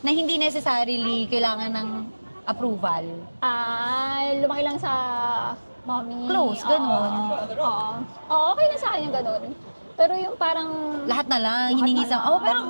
Na hindi necessarily kailangan ng approval. Lumaki lang sa mommy. Close, ganun. Oo. Oo, okay na sa akin yung ganun. Pero yung parang... Lahat na lang, hiningi na sa... lang. pero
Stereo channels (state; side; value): inverted; both; correlation -1.00